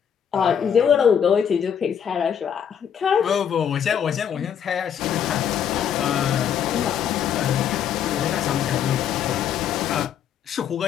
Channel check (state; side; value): quieter; right; 8.5 dB